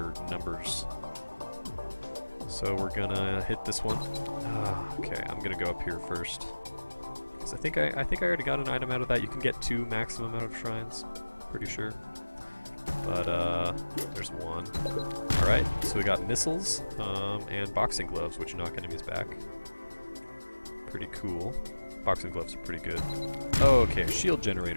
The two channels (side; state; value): both; inverted; correlation -1.00